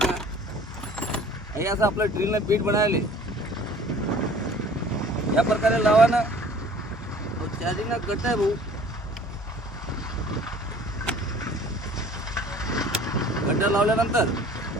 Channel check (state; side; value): normal; both; correlation 0.49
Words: हे असं आपलं ड्रिलनं बीट बनायले या प्रकारे लावा ना. चार्जिंगला गट आहे भाऊ. गड्डा लावल्यानंतर